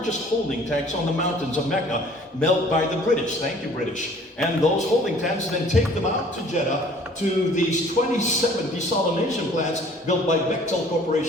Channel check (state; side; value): normal; both; correlation 0.53